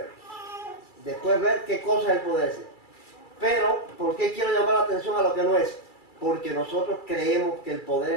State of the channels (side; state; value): right; late; 2.3 ms